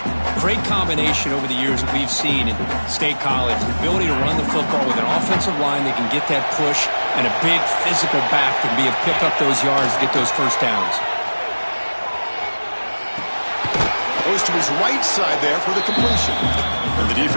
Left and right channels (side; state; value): both; inverted; correlation -1.00